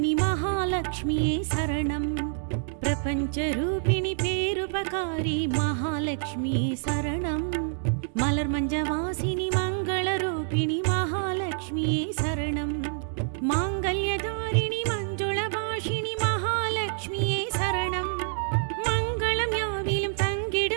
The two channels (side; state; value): left; silent; digital silence